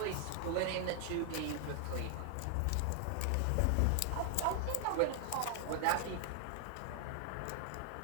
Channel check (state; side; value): different; both; correlation 0.00